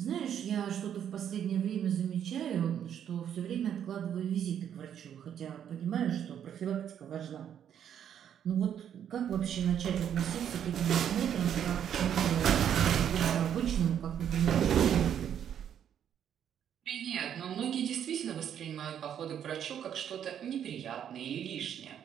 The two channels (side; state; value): left; quieter; 9.3 dB